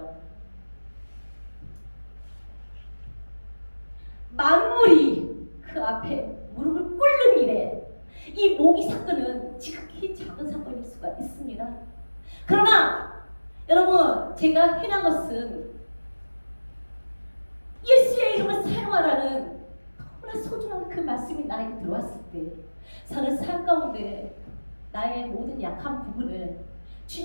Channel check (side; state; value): both; inverted; correlation -1.00